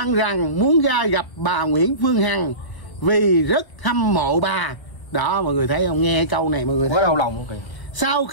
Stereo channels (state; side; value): late; right; 1.1 ms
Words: rằng muốn ra gặp bà Nguyễn Phương Hằng vì rất hâm mộ bà. Đó, mọi người thấy không? Nghe câu này mọi người quá đau lòng không kìa. Sau